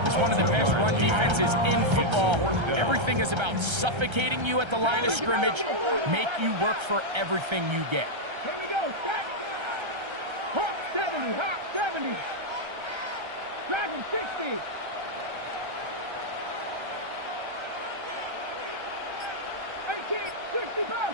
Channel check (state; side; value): late; left; 1.3 ms